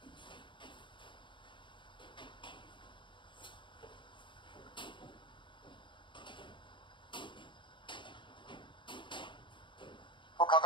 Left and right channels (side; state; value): right; late; 0.23 ms